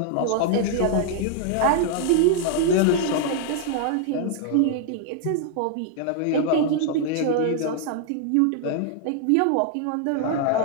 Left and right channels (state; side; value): different; both; correlation 0.00